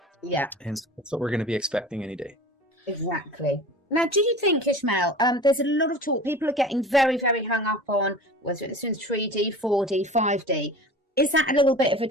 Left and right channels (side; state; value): both; normal; correlation 0.38